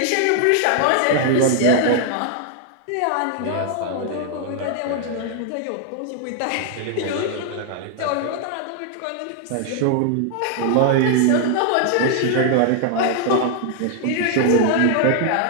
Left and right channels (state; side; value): different; both; correlation 0.00